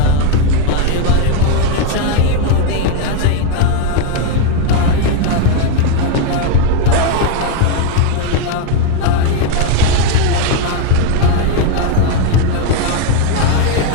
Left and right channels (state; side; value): different; both; correlation 0.01